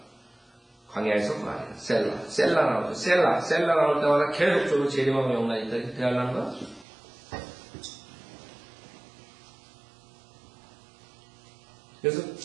광야에서 말이야. 셀라 나오죠. 셀라 나올 때마다 계속적으로 재림하고 영란이 있다. 이렇게 대하려는 거야. 그래서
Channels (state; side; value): drops out; left; at 6.9 s